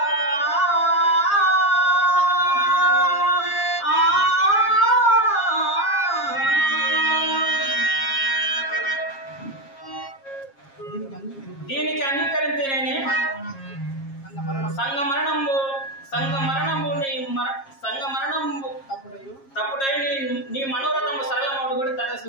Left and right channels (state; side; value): late; right; 7.4 ms